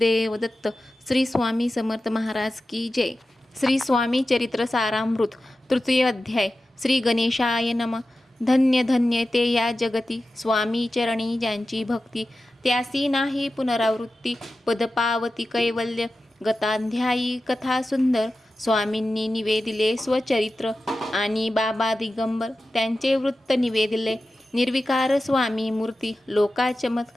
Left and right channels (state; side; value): normal; both; correlation 0.93